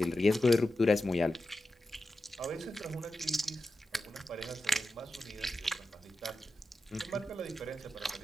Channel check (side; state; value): both; normal; correlation 0.91